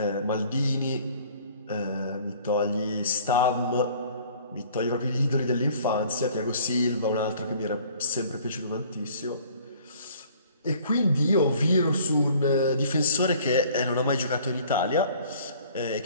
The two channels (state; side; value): inverted; both; correlation -0.53